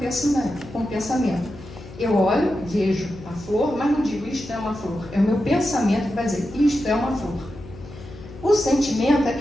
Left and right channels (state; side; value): noise; left; hum, 16 dB below the sound